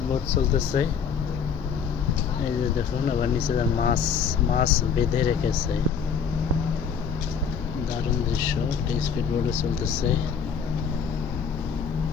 বোট চলতেছে, এই যে দেখুন। আবার নিচে মাছ মাছ বেঁধে রেখেছে। দারুণ দৃশ্য। স্পিড বোটে চলতেছে,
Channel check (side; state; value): right; quieter; 6.8 dB